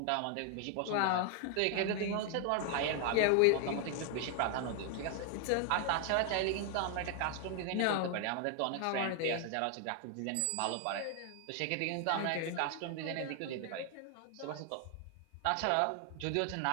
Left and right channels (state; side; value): different; both; correlation 0.00